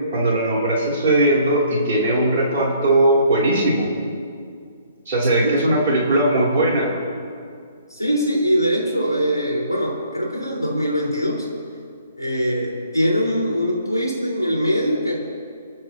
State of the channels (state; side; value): inverted; both; correlation -0.63